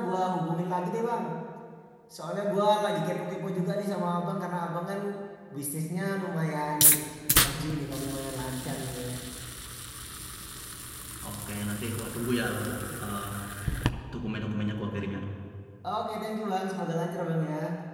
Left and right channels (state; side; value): identical; both; correlation 1.00